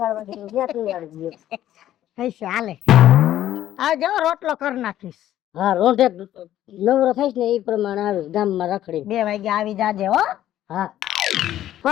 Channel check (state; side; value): quieter; right; 12.5 dB